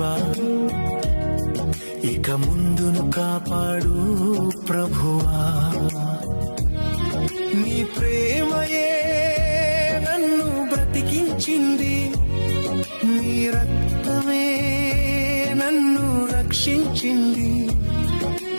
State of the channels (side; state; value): both; inverted; correlation -1.00